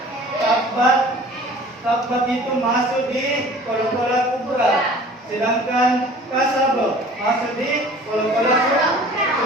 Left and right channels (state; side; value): normal; both; correlation 0.47